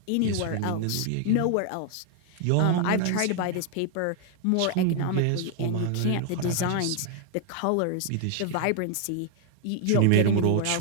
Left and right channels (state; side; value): different; both; correlation 0.00